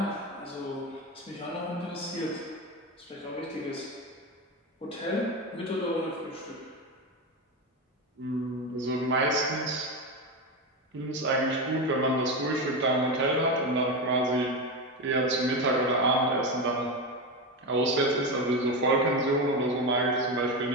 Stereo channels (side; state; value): both; normal; correlation 0.16